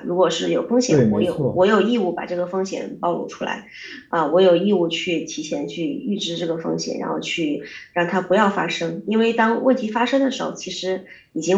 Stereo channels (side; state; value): both; identical; correlation 1.00